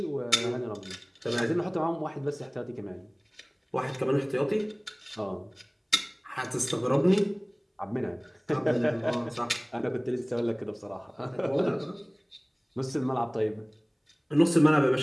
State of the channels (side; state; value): both; identical; correlation 1.00